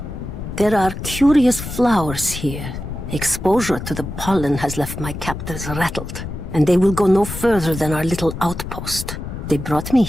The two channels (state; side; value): noise; left; rumble, 8 dB below the sound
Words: There are curious flowers here. Exposure to the pollen has left my captors rattled, and they will go no further than our little outpost. They brought me